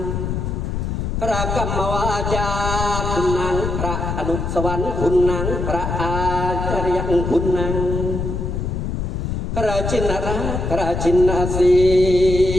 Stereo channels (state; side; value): noise; left; rumble, 2 dB below the sound